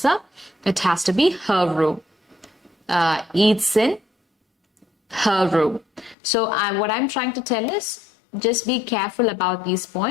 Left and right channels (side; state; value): right; drops out; at 6.2 s